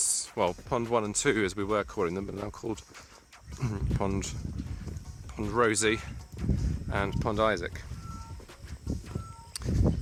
well, Pond 1 and 2 as we were calling them, but now called Pond Rosie and Pond Isaac.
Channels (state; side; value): identical; both; correlation 1.00